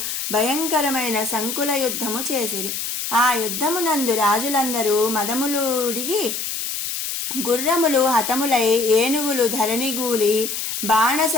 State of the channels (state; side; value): noise; left; hiss, 4 dB below the sound